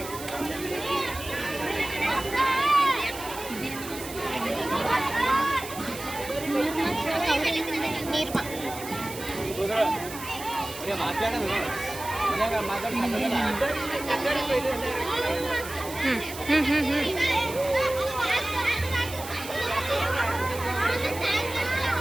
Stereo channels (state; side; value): noise; right; hiss, 12 dB below the sound